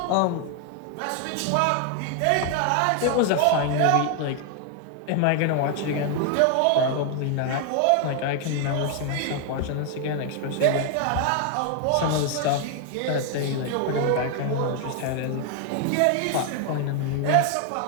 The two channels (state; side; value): different; both; correlation 0.01